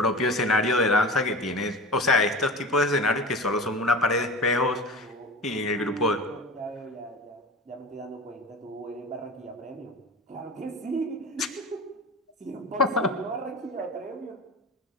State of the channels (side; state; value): both; normal; correlation 0.33